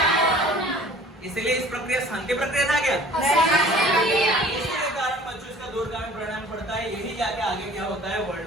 इसलिए इस प्रक्रिया शांति प्रक्रिया था क्या? इसके कारण बच्चों इसका दूरगामी परिणाम पड़ता है, यही जाके आगे क्या होता है,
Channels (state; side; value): normal; both; correlation 0.48